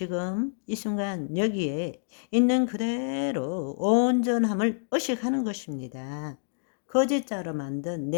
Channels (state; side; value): silent; right; digital silence